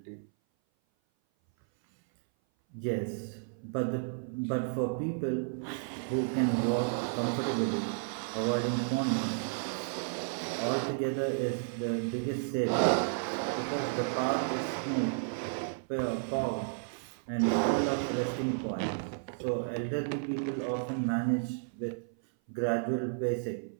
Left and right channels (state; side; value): silent; left; 56 dB below the other